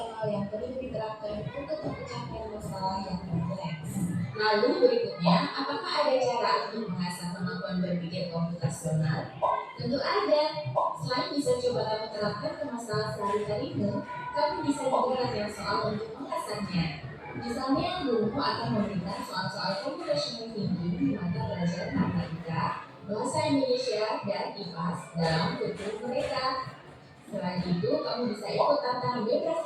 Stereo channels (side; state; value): both; identical; correlation 1.00